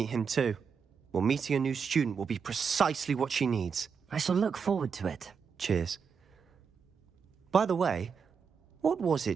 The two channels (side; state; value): left; quieter; 6.2 dB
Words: him too. Well, meeting a new student will be precisely what she needs. I shall look forward to it. Cheers. By the way, what was